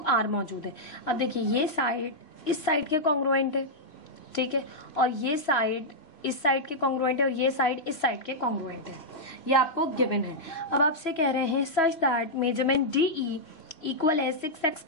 मौजूद है। अब देखिए ये साइड इस साइड के कॉन्ग्रुएंट है, ठीक है, और ये साइड इस साइड के कॉन्ग्रुएंट है और ये साइड इस साइड के कॉन्ग्रुएंट है, ये आपको गिवन है। अब आपसे कह रहे हैं such that measurement DE equal है 6x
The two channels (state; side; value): late; right; 3.0 ms